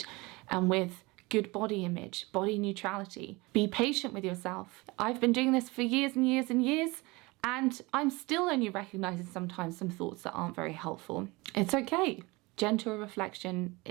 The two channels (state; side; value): quieter; left; 23.9 dB